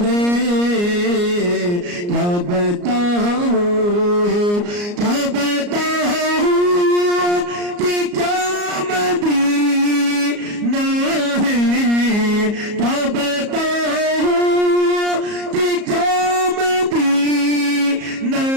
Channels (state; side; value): late; left; 34 ms